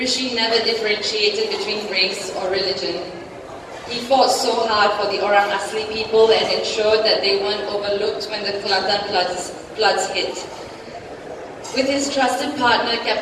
never differentiated between race or religion. He fought so hard for the Orang Asli people and ensured that they weren't overlooked when the Kelantan floods hit. With his trusted partner,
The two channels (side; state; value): both; identical; correlation 1.00